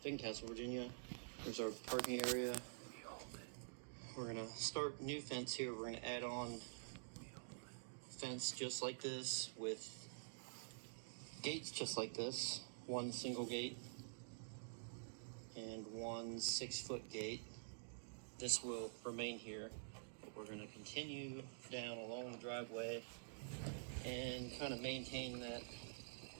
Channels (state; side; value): silent; left; digital silence